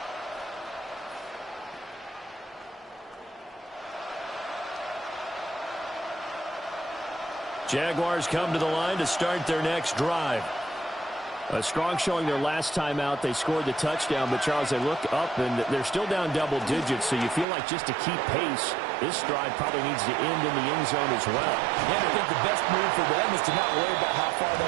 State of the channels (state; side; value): drops out; left; at 17.4 s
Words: Jaguars come to the line to start their next drive. A strong showing their last time out. They scored the touchdown, but, Charles, they look up, and they're still down double digits, so you feel like just to keep pace, this drive probably needs to end in the end zone as well. Yeah, I think the best move for them is to not worry about how far they